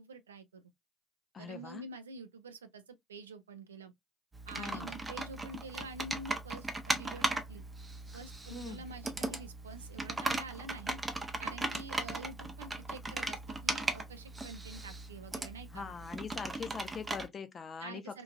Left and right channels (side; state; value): both; normal; correlation 0.71